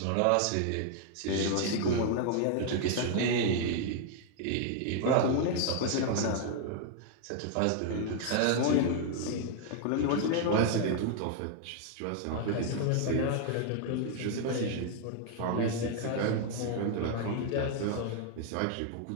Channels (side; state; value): both; different; correlation 0.00